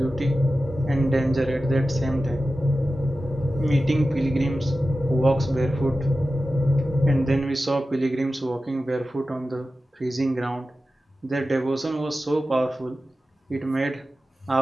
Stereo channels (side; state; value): both; normal; correlation 0.94